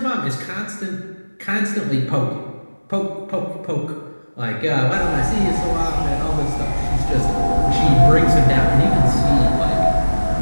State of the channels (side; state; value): both; inverted; correlation -1.00